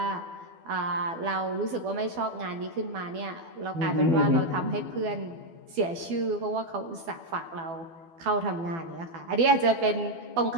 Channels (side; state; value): left; late; 12 ms